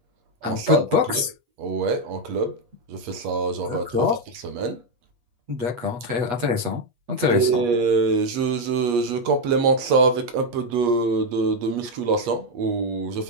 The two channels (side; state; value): left; late; 8.3 ms